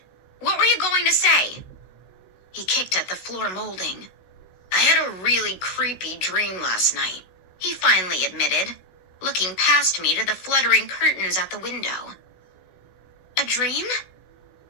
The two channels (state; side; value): late; right; 16 ms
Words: What were you going to say? He kicked at the floor molding. I had a really creepy dream last night, he finally admitted, looking past me to the fluttering curtains at the window. A dream?